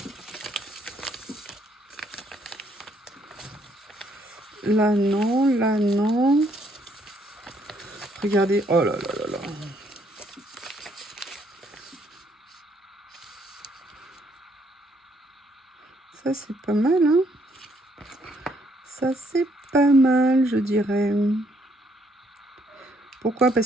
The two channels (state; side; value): normal; both; correlation 0.70